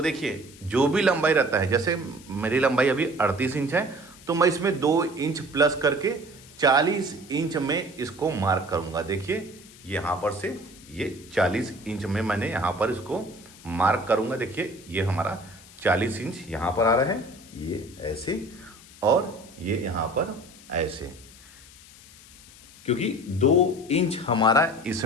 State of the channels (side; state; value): left; noise; hiss, 21 dB below the sound